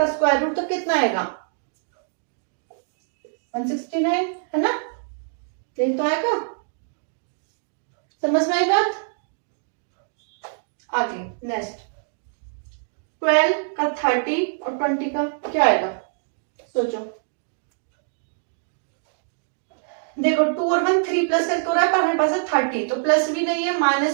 स्क्वायर रूट तो कितना आएगा 169, है ना। यही तो आएगा, समझ में आई बात। आगे नेक्स्ट, 12 का 30 और 20 का क्या आएगा, सोचो। देखो 2 और 1 3 प्लस करके हो रहा है, पर हमारे पास है 30, तो प्लस भी नहीं है,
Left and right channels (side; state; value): left; silent; digital silence